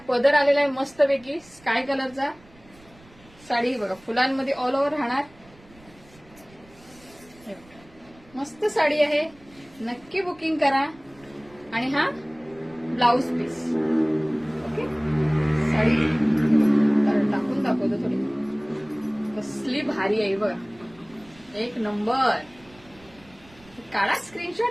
पदर आलेला आहे मस्तपैकी स्काय कलरचा. साडी बघा फुलांमध्ये ऑल ओव्हर राहणार. मस्त साडी आहे, नक्की बुकिंग करा. आणि हा ब्लाउज पीस. ओके, साडी टाकून दाखवतो थोडी, कसली भारी आहे बघा, एक नंबर. काढा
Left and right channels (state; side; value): noise; right; rumble, 26 dB below the sound